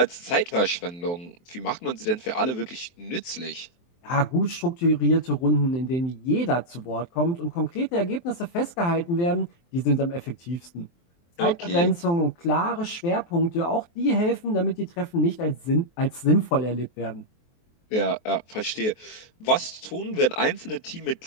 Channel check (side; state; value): right; late; 23 ms